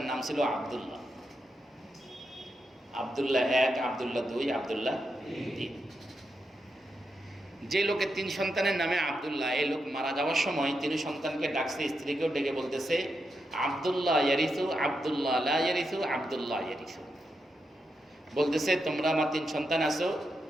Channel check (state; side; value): normal; both; correlation 0.85